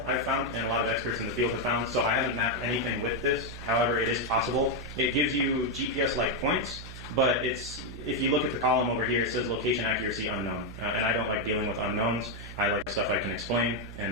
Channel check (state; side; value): noise; right; hum, 12 dB below the sound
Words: I've found, and a lot of experts in the field have found, so I haven't mapped anything with this. However, it is possible. It gives you GPS-like points, but if you look at the column over here, it says location accuracy unknown. And I don't like dealing with unknowns. I like stuff I can explain